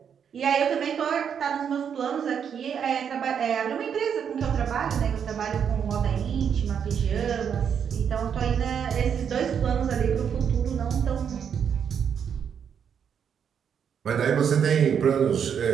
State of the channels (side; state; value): left; quieter; 7.7 dB